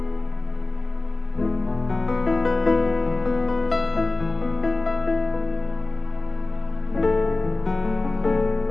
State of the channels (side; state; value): right; quieter; 3.1 dB